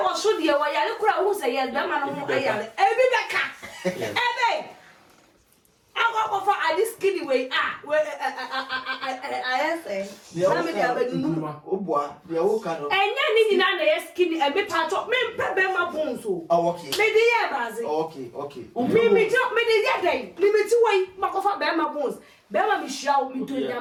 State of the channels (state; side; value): identical; both; correlation 1.00